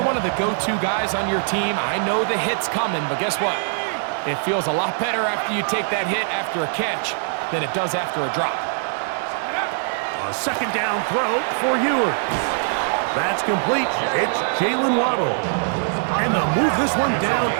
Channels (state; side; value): silent; left; 63 dB below the other